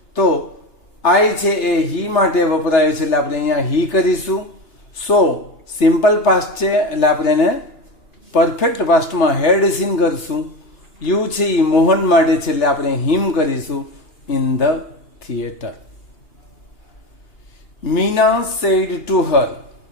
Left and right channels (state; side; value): late; right; 3.3 ms